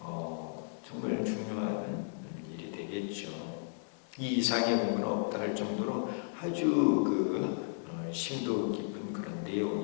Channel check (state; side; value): silent; right; digital silence